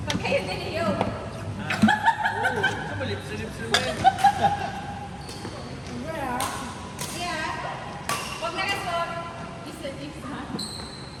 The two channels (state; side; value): identical; both; correlation 1.00